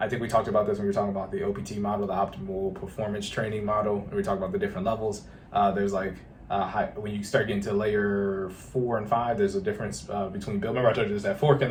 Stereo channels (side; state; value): both; identical; correlation 1.00